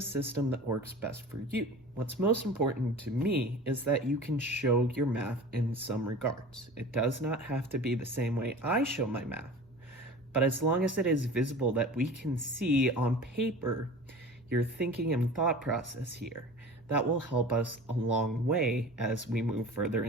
system that works best for you. What's most important to me is that you can show your math in some regards. It does not have to be the same way I show my math, but as long as it is visible that we can see on paper your thinking and thought process here, that will help us a long way as we move further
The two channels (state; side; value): normal; both; correlation 0.38